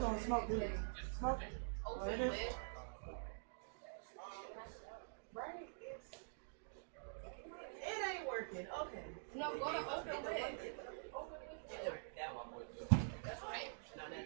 smoke, dude. Smoke. Oh, it is. It ain't working. Okay. No, go to open lid. That's right. No.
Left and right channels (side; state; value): left; silent; digital silence